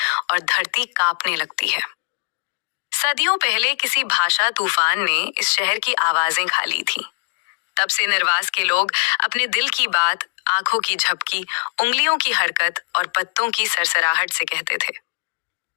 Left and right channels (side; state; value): right; silent; digital silence